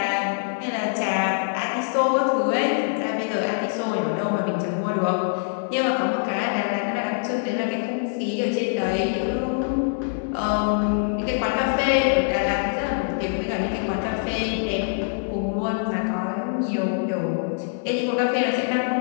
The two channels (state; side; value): silent; right; digital silence